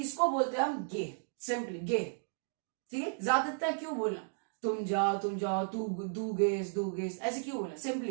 बोलते हैं हम गे, सिंपली गे, ठीक है। ज्यादातर क्यों बोलना, तुम जाओ, तू दू गेस ऐसे क्यों बोलना,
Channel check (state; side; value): silent; left; digital silence